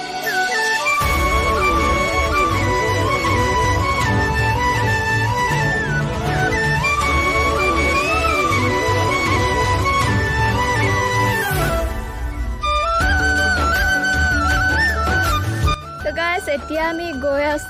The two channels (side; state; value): both; identical; correlation 1.00